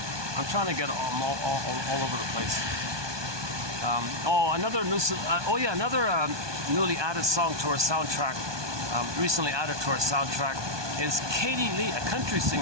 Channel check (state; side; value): late; left; 1.2 ms